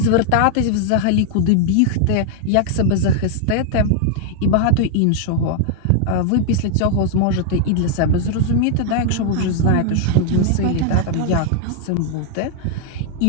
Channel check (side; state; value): both; different; correlation 0.00